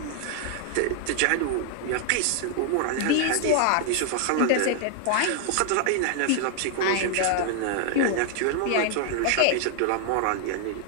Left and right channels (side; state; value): both; different; correlation 0.00